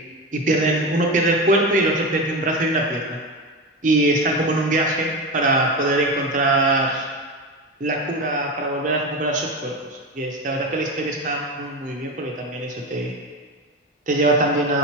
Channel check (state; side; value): normal; both; correlation 0.21